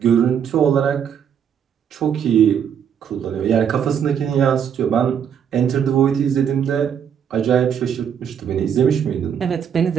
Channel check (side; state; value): left; quieter; 8.3 dB